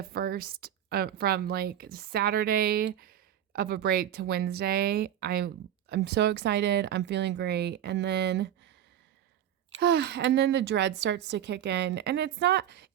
first from like Saturday of a break to Wednesday, I'm so excited, I'm feeling great, and then the dread starts to kick in, and it's not,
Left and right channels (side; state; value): left; quieter; 10.7 dB